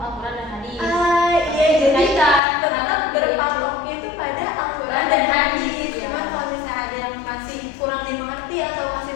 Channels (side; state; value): right; drops out; at 2.4 s